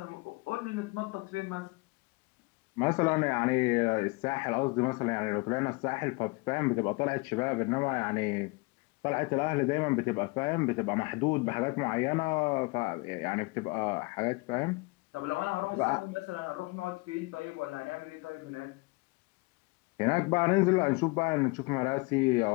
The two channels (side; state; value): right; quieter; 26.8 dB